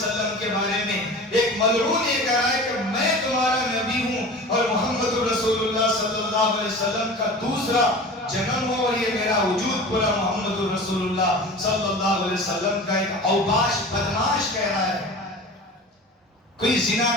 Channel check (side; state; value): both; normal; correlation 0.37